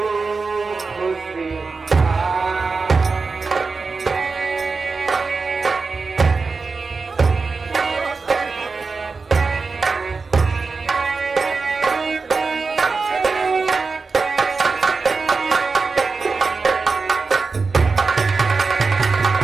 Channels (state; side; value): quieter; left; 4.4 dB